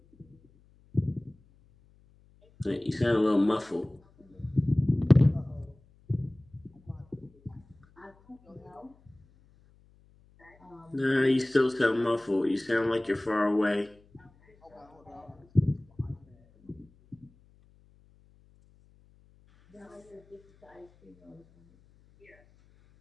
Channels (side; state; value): left; noise; hum, 30 dB below the sound